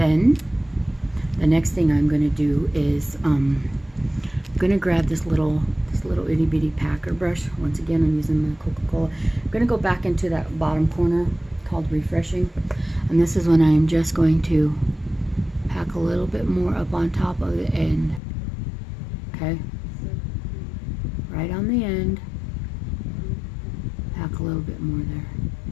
the next thing I'm going to do is I'm going to grab this little itty bitty packer brush. Once again, I'm using the Coca-Cola. I'm going to go back into that bottom corner called refreshing, and this is when I'm just going to pack a little bit more up on top of the end. Okay, right on the end, pack a little bit more there.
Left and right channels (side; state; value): right; drops out; at 18.2 s